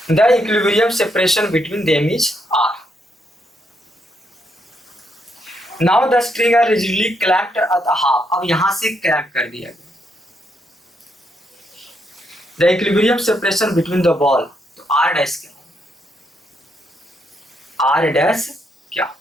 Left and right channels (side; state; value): both; normal; correlation 0.77